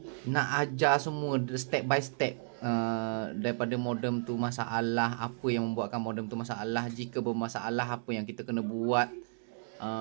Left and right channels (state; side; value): silent; left; digital silence